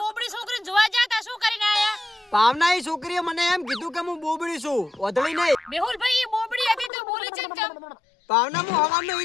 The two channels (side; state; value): right; drops out; at 6.9 s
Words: બોબડી છોકરીને જોવા જાતા શું કરીને આયા? ભાવના એ છોકરીએ મને એમ કીધું કે હું બોબડી છું, ઓધળી નહીં. મેહુલભાઈ એ બોબડી હતી તો બોલી ચમ. ભાવના હું હવાનો